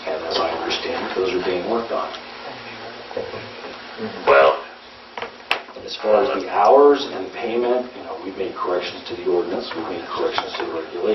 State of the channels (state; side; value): identical; both; correlation 1.00